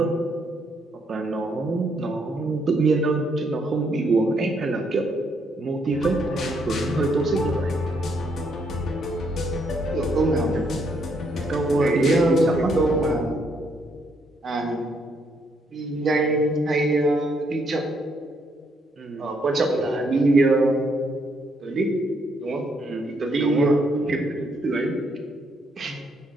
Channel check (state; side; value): normal; both; correlation 0.73